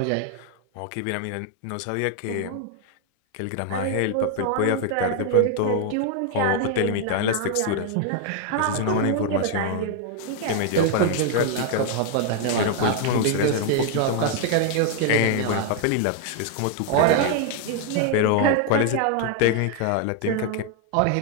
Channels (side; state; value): both; different; correlation 0.00